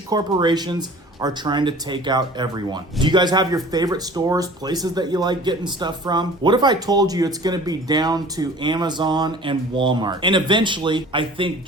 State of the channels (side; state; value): both; normal; correlation 0.45